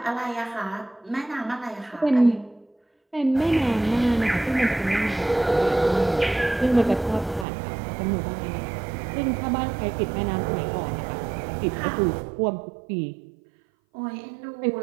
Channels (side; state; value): left; drops out; at 7.5 s